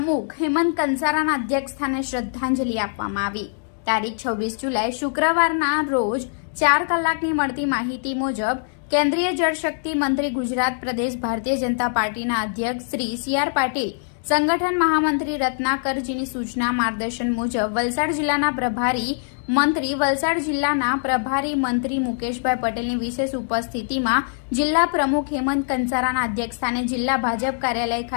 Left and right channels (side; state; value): right; silent; digital silence